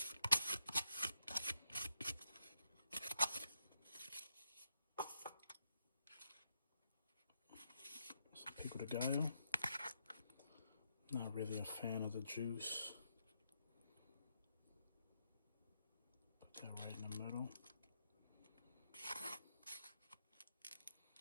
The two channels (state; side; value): inverted; both; correlation -0.80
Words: Some pico de gallo. Not really a fan of the juice. Put that right in the middle.